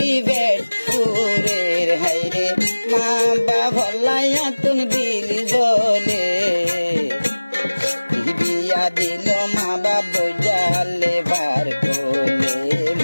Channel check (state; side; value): inverted; both; correlation -1.00